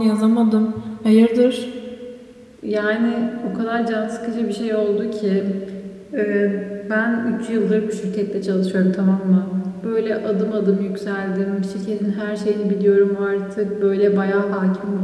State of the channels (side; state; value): both; identical; correlation 1.00